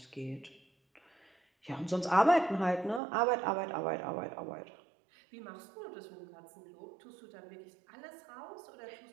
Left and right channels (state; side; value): drops out; left; at 3.0 s